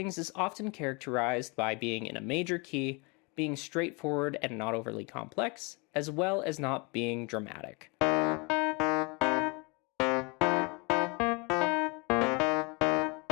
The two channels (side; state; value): right; quieter; 30.2 dB